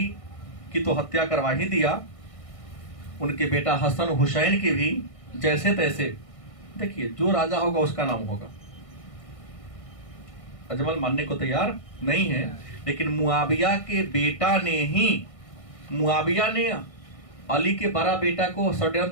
की तो हत्या करवा ही दिया, उनके बेटा हसन हुसैन की भी जैसे तैसे। देखिए, जो राजा होगा उसका नाम होगा। अजमल मानने को तैयार नहीं है, लेकिन मुआविया के बेटा ने ही, मुआविया ने अली के बड़ा बेटा को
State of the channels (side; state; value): right; late; 1.6 ms